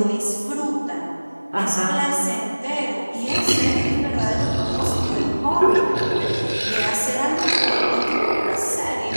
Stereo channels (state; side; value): inverted; both; correlation -1.00